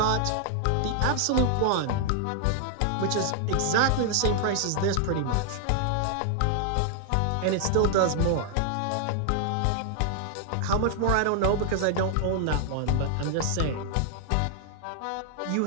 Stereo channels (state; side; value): different; both; correlation -0.01